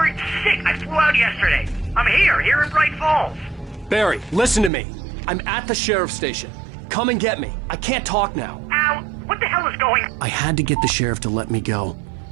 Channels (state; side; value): drops out; left; at 4.7 s